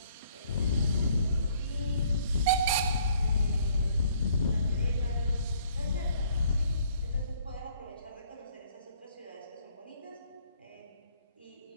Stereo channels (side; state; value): both; inverted; correlation -0.61